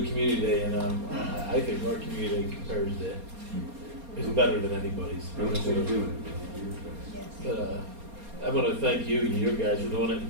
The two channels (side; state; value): left; late; 4.3 ms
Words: community day, and I think our community compares to is better than anybody's. But I want to thank you and you guys for doing it,